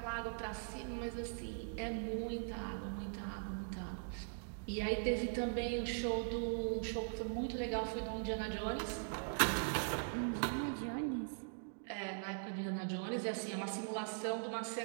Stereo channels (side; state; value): left; silent; digital silence